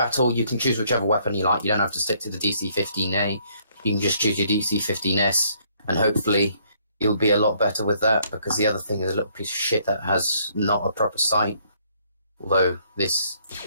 you can choose whichever weapon you like. You don't have to stick to the DC-15A. You can just choose your DC-15S, and hopefully you'll be a lot better with that, because the other thing is a little piece of shit that has not a proper sight. Although this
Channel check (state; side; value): inverted; both; correlation -0.66